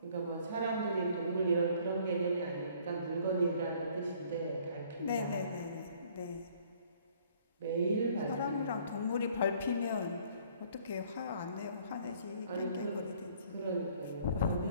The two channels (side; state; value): both; inverted; correlation -0.59